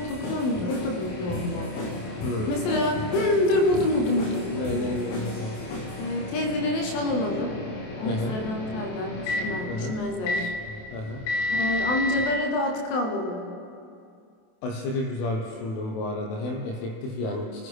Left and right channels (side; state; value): right; late; 28 ms